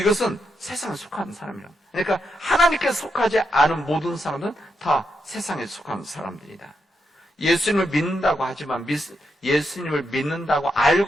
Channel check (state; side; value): normal; both; correlation 0.83